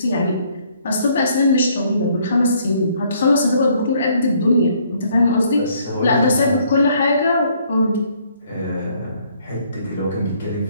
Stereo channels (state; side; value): inverted; both; correlation -0.65